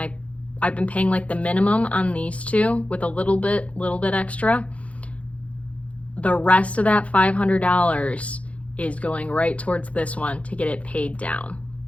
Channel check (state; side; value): late; right; 0.064 ms